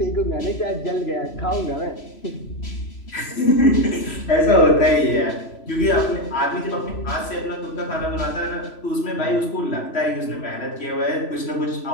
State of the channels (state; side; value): late; right; 3.0 ms